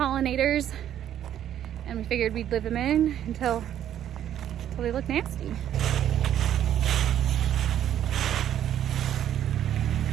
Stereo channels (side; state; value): left; quieter; 10.8 dB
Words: and we figured we'd leave them in until they look nasty.